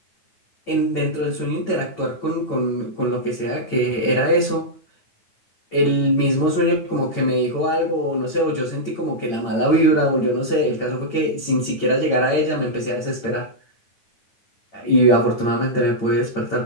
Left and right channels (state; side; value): late; right; 9.0 ms